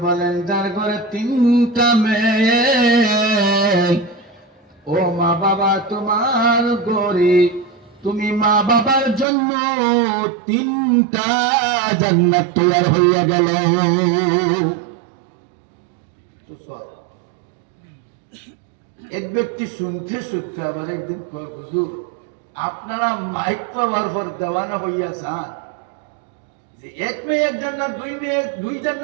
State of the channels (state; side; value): drops out; left; at 9.2 s